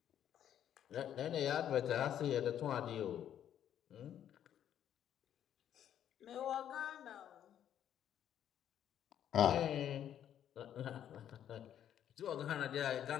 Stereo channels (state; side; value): quieter; right; 10.2 dB